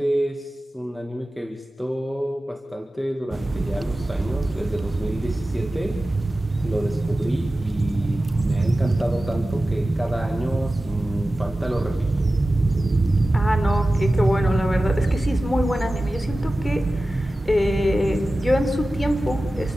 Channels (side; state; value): both; normal; correlation 0.95